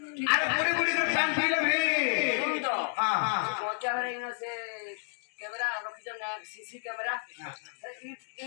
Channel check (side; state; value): right; silent; 57 dB below the other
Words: আরে পুরি পুরি করে টান দিলে রে। হ্যাঁ হ্যাঁ মজা হয়ে গেছে कैमरा रखी जब ना सीसी कैमरा